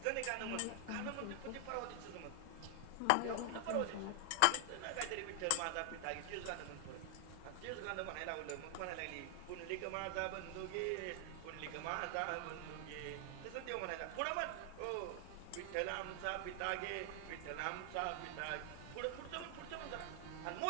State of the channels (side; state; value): both; different; correlation 0.00